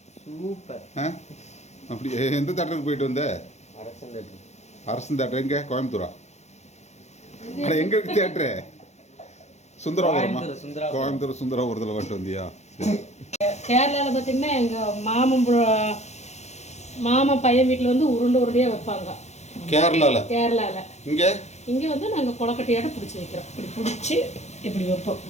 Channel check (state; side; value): late; right; 0.33 ms